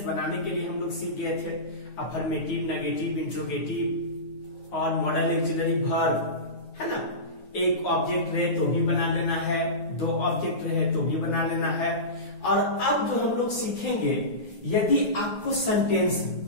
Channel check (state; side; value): late; right; 9.6 ms